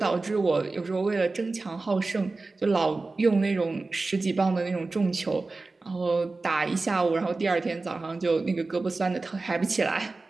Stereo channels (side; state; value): left; quieter; 3.5 dB